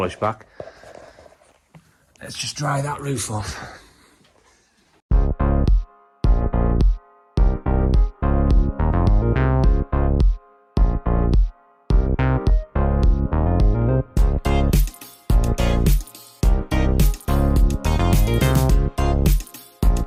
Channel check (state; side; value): identical; both; correlation 1.00